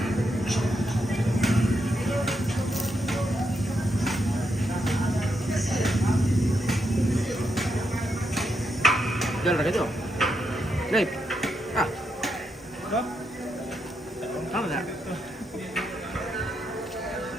Jalan lagi tu. Lep. Ah. Kamu tak?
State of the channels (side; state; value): both; normal; correlation 0.82